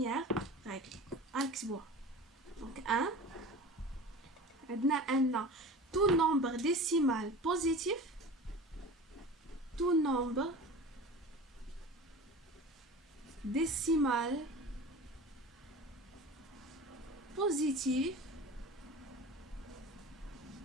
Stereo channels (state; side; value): normal; both; correlation 0.36